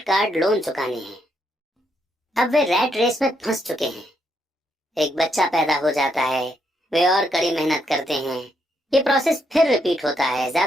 कार्ड लोन चुकाने हैं। अब वे रैट रेस में फंस चुके हैं। एक बच्चा पैदा हो जाता है, वे और कड़ी मेहनत करते हैं। ये प्रोसेस फिर रिपीट होता है,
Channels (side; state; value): both; normal; correlation 0.77